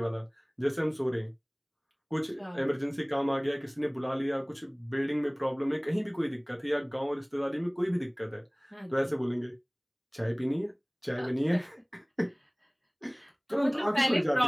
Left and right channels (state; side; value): identical; both; correlation 1.00